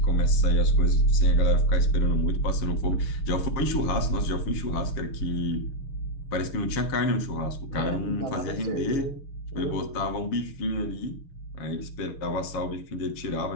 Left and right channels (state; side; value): late; right; 7.3 ms